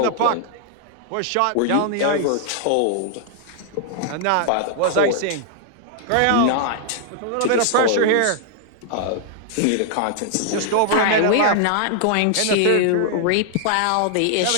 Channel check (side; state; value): both; different; correlation -0.01